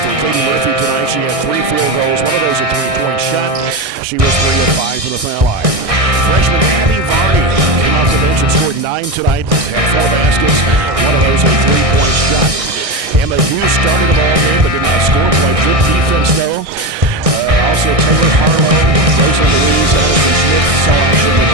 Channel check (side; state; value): left; late; 1.6 ms